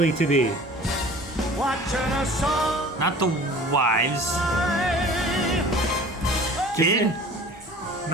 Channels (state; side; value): normal; both; correlation 0.45